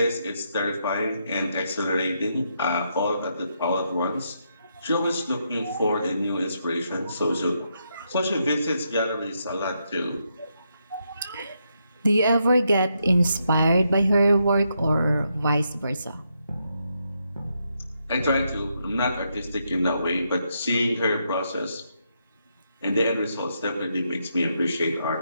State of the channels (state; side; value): inverted; both; correlation -0.80